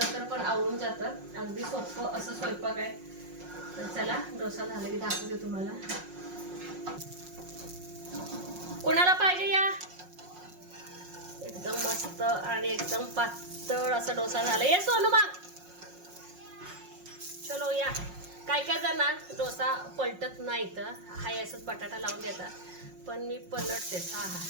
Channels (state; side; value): late; left; 5.5 ms